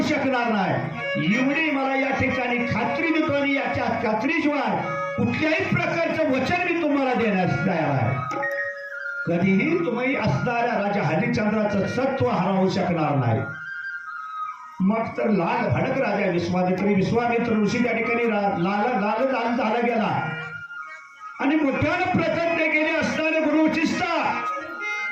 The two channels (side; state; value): both; identical; correlation 1.00